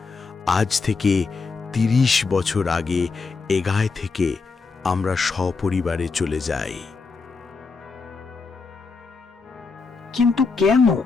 আজ থেকে 30 বছর আগে এ গায়ে থেকে আমরা সপরিবারে চলে যাই। কিন্তু কেন?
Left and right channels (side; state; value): right; quieter; 4.5 dB